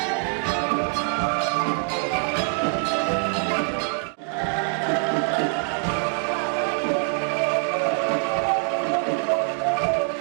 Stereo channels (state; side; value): quieter; left; 39.0 dB